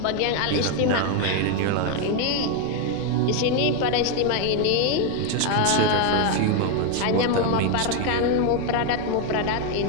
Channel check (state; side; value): different; both; correlation 0.01